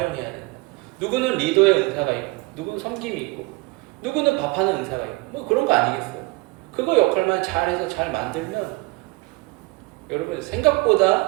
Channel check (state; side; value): quieter; left; 23.7 dB